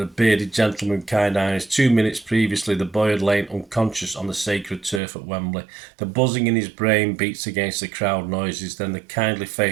bearded gentleman with kind eyes. 2 minutes previously, the boy had lain unconscious on the sacred turf at Wembley. The buzzing in his brain beats against the crowd noises. Then the kindly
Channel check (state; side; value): drops out; left; at 5.0 s